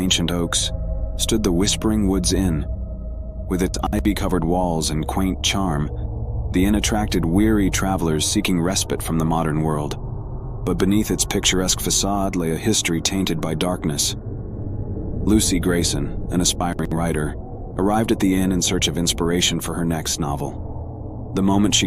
oaks, stood the Whispering Woods Inn. With its ivy-covered walls and quaint charm, the inn attracted weary travelers seeking respite from the modern world. But beneath its picturesque facade lay a history tainted by darkness. Lucy Grayson, an aspiring writer, arrived at the inn in search of inspiration for her next novel. The moment she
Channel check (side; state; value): both; identical; correlation 1.00